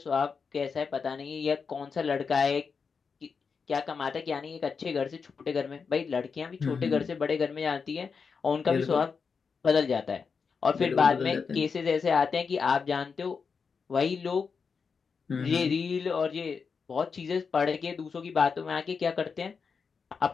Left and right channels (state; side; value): quieter; right; 5.5 dB